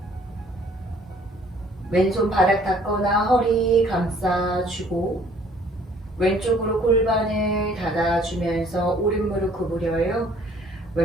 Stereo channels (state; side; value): normal; both; correlation 0.57